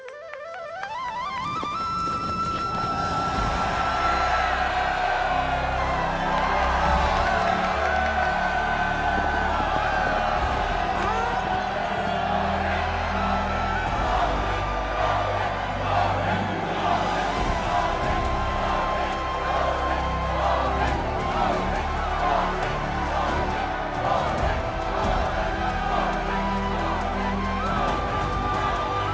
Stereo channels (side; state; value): both; identical; correlation 1.00